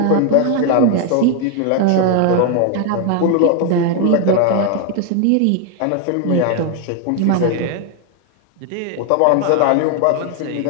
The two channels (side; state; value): both; different; correlation 0.00